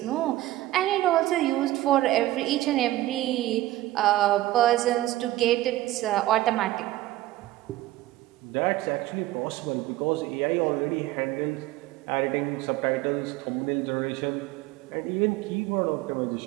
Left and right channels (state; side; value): quieter; left; 16.1 dB